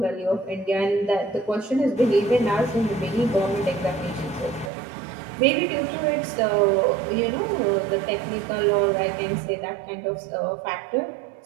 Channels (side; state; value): left; drops out; at 4.7 s